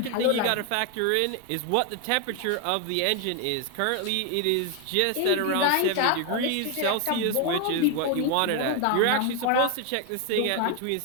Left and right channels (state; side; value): different; both; correlation 0.01